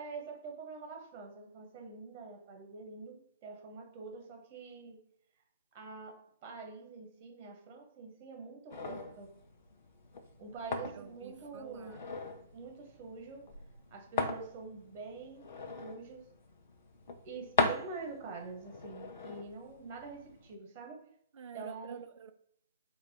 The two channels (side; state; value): both; inverted; correlation -0.37